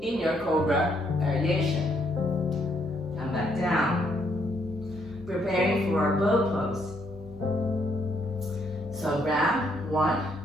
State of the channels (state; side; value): normal; both; correlation 0.72